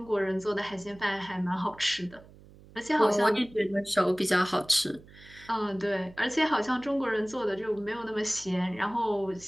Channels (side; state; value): right; noise; hum, 22 dB below the sound